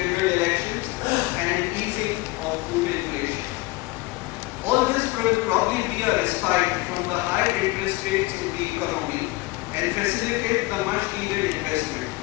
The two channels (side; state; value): right; quieter; 21.7 dB